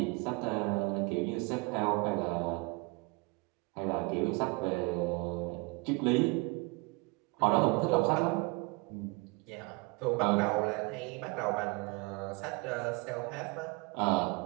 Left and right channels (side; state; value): left; quieter; 28.0 dB